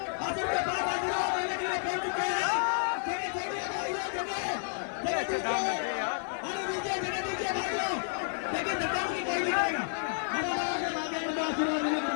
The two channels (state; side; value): silent; right; digital silence